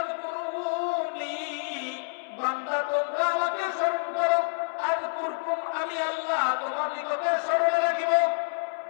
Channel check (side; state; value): right; silent; 59 dB below the other